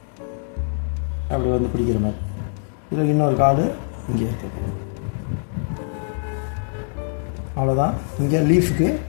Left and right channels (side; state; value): right; silent; digital silence